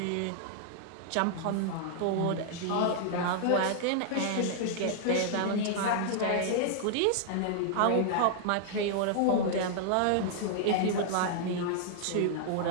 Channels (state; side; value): different; both; correlation -0.01